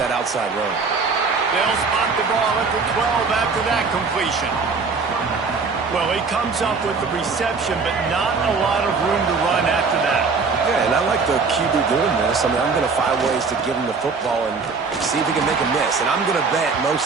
outside run. They'll spot the ball at the 12 after that completion. Well, he comes up with the reception, but not a lot of room to run after that. Yeah, and I like the QB doing this. I mean, I'm going to find ways to give him the football and see if he can make a miss. And I'm going to bet most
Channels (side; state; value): left; quieter; 4.7 dB